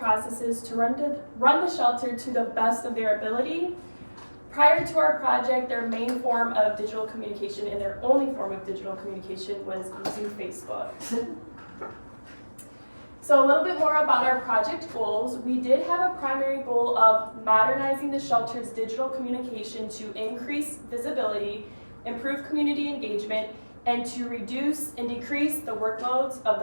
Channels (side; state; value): both; inverted; correlation -1.00